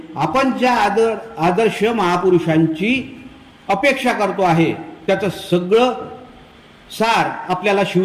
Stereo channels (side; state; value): both; identical; correlation 1.00